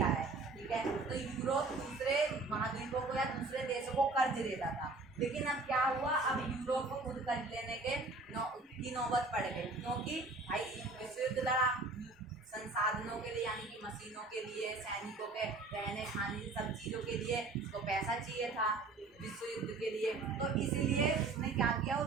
है, ठीक है। तो यूरोप दूसरे महाद्वीपों को या दूसरे देशों को कर्ज देता था। लेकिन अब क्या हुआ? अब यूरोप को खुद कर्ज लेने की नौबत पड़ गई, क्योंकि भाई विश्व युद्ध लड़ा, संसाधनों के लिए यानी कि मशीनों के लिए, सैनिकों के रहने खाने सब चीज़ों के लिए उसको पैसा चाहिए था विश्व युद्ध के लिए। तो इसलिए उसने क्या किया? वो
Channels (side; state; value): left; quieter; 3.5 dB